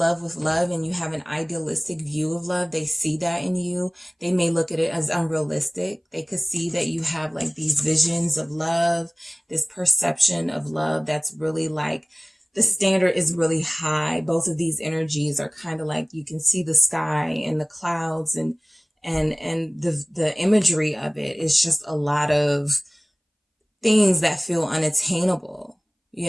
with love and you have an idealistic view of love. They see that in you. They may look at it as unrealistic. They could see that you have like these visions of love, this perception of love that's really like, the standard is really high. Both of these energies are kind of like, you can see the sky and the clouds and the imagery of it is just a lot of things that feel unattainable.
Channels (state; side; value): identical; both; correlation 1.00